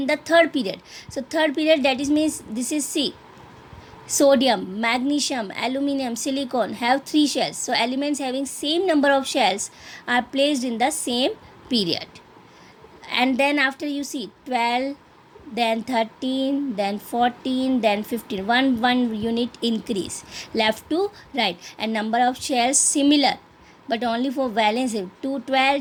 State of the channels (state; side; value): identical; both; correlation 1.00